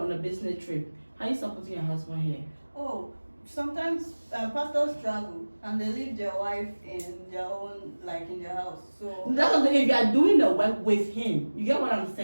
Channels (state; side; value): inverted; both; correlation -1.00